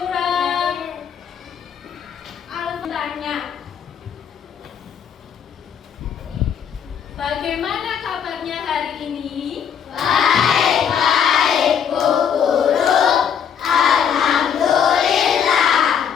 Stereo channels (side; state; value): right; quieter; 7.9 dB